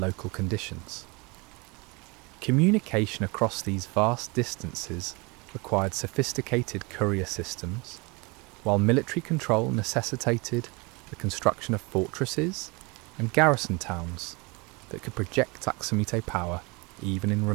conditions. Communication across these vast distances required sophisticated courier systems, while military control necessitated the construction of fortresses and garrison towns that could project Aksumite power even in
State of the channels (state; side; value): quieter; left; 27.6 dB